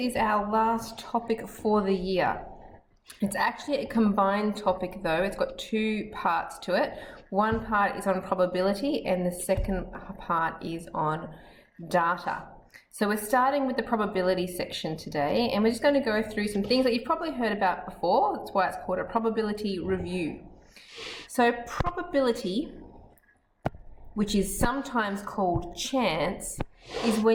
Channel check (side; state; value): both; identical; correlation 1.00